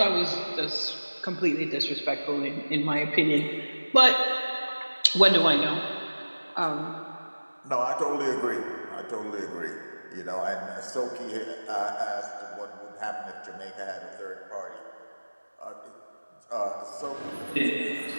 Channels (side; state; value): both; inverted; correlation -1.00